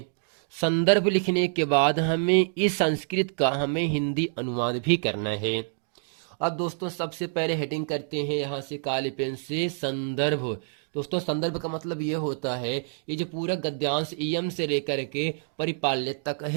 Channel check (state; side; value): silent; left; digital silence